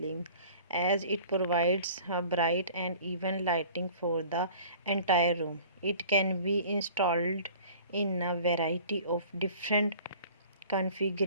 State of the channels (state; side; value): inverted; both; correlation -0.47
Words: as it provides a bright and even lighting for the entire room. It can be installed in a variety of different